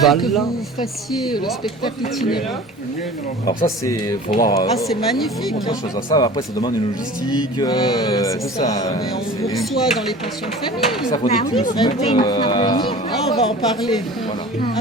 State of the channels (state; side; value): normal; both; correlation 0.41